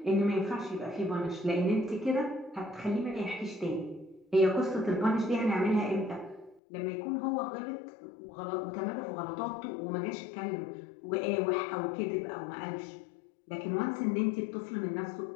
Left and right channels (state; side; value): drops out; right; at 6.6 s